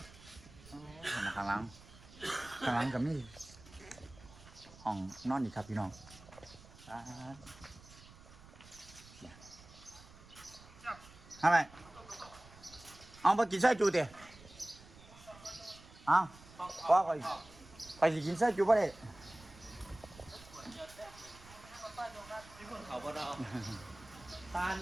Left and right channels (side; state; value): right; noise; rumble, 20 dB below the sound